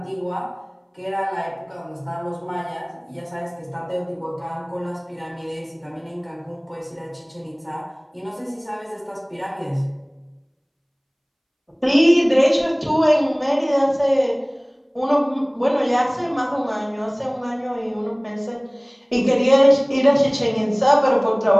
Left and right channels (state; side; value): identical; both; correlation 1.00